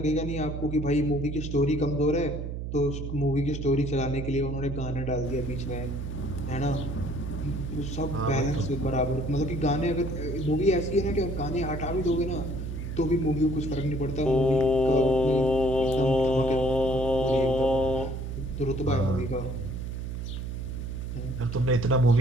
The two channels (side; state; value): right; noise; hum, 5 dB below the sound